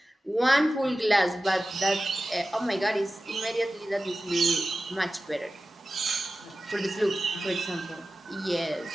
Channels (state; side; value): normal; both; correlation 0.95